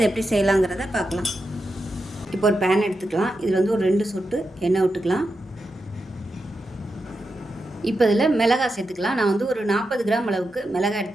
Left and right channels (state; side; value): normal; both; correlation 0.88